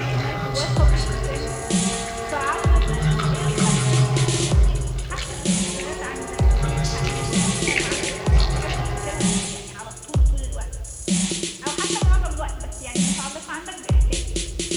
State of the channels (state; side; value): identical; both; correlation 1.00